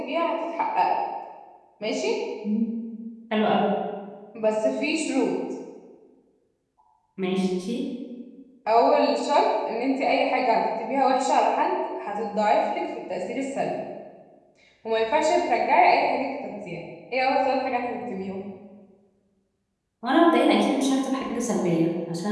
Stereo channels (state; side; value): identical; both; correlation 1.00